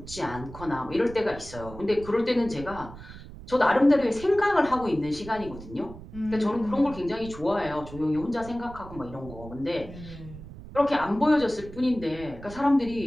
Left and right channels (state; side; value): noise; right; rumble, 15 dB below the sound